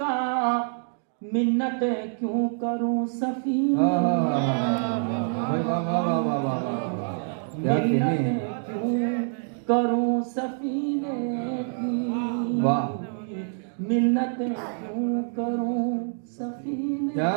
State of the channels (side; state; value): left; silent; digital silence